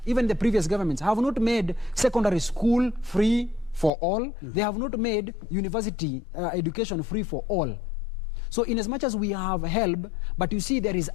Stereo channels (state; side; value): drops out; right; at 3.9 s